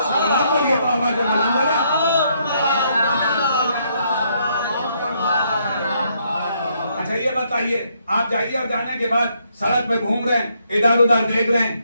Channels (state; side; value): inverted; both; correlation -0.73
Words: اچھا یہ بتائیے, آپ جائیے اور جانے کے بعد سڑک پہ گھوم رہے ہیں, ادھر ادھر دیکھ رہے ہیں,